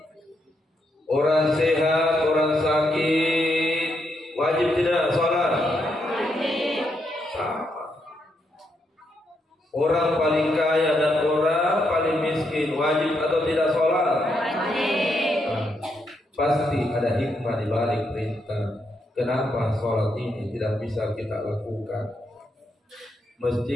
Orang sehat, orang sakit wajib tidak sholat? Wajib. Sama. Orang paling kaya dan orang paling miskin wajib atau tidak sholat? Wajib. Pasti ada hikmah di balik perintah. Kenapa sholat ini tidak bisa kita lakukan?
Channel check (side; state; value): both; normal; correlation 0.79